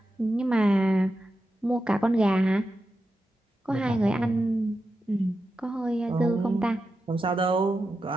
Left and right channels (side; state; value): both; normal; correlation 0.90